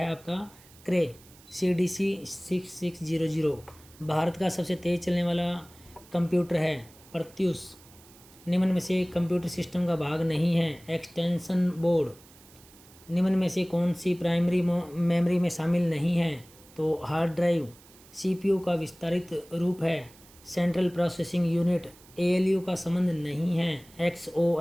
आपका क्रे CDC 6600। भारत का सबसे तेज़ चलने वाला कंप्यूटर है प्रत्यूष। निम्न में से कंप्यूटर सिस्टम का भाग नहीं है एक्सटेंशन बोर्ड। निम्न में से कौन सी प्राइमरी मेमोरी में शामिल नहीं है, तो हार्ड ड्राइव। CPU का विस्तारित रूप है सेंट्रल प्रोसेसिंग यूनिट। ALU का संबंध नहीं है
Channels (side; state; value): right; noise; hiss, 24 dB below the sound